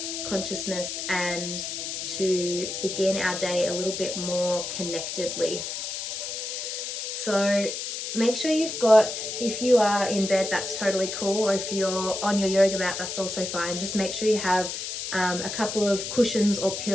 consciousness, and to begin our day a little bit more connectedly. So make sure if you are in bed, that's totally cool, or if you're on your yoga mat, that's also fine. Just make sure you have a couple of cushions or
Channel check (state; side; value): noise; left; hiss, 5 dB below the sound